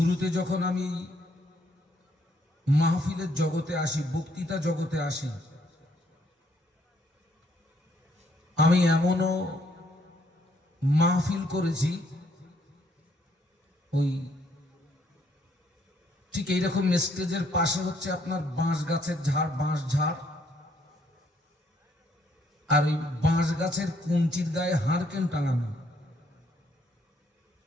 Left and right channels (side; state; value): both; normal; correlation 0.69